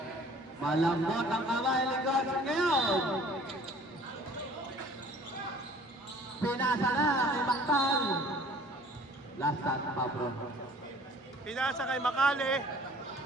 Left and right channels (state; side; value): normal; both; correlation 0.51